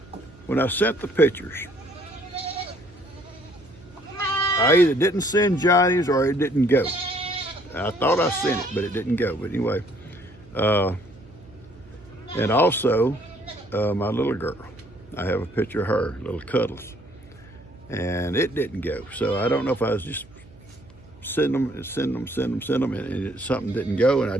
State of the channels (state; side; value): noise; right; hum, 24 dB below the sound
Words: When I sent the pictures, I either didn't send Johnny's or it didn't go. I thought I sent it, but it didn't go. But anyway, and also my little girl. I have a picture of her, little Cuddles, and it didn't go. So I don't know if I was just send them, and something didn't go, and I